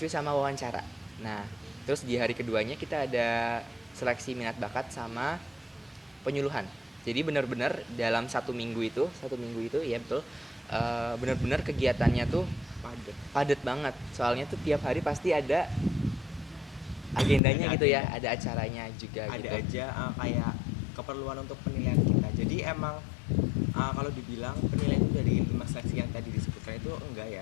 sama wawancara. Nah, terus di hari keduanya kita ada seleksi minat bakat sama penyuluhan. Jadi benar-benar dalam satu minggu itu ya betul, benar-benar kegiatannya tuh padat banget. Soalnya tuh tiap hari pasti ada agendanya gitu ya, ada acaranya juga ada gitu. Ada aja kayak keperluan untuk penilaian kita. Jadi emang kalau dibilang penilaian itu dari 5 seleksi yang tadi disebutkan itu enggak ya.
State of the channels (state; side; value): drops out; right; at 17.4 s